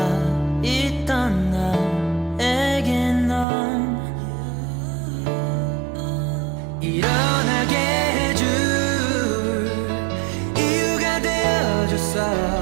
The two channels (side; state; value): left; drops out; at 3.5 s